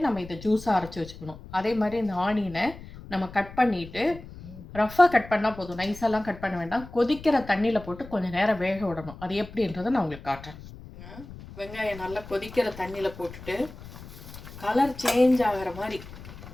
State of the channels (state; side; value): noise; left; rumble, 16 dB below the sound